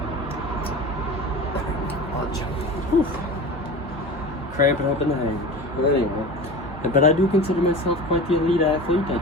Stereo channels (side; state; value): both; normal; correlation 0.33